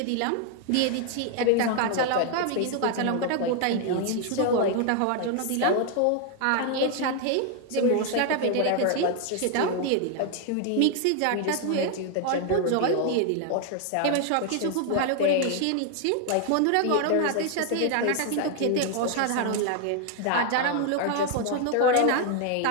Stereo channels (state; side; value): different; both; correlation 0.00